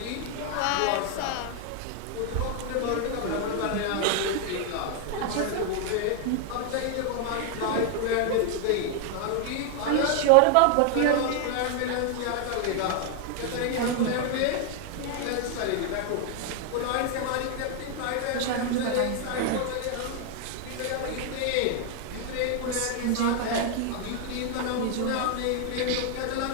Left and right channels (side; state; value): both; different; correlation 0.00